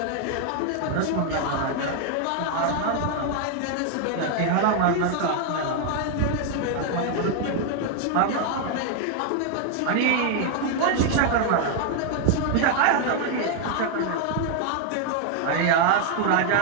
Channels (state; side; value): different; both; correlation 0.00